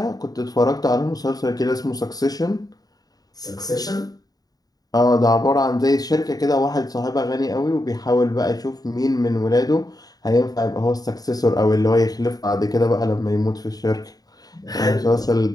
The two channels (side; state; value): right; late; 0.18 ms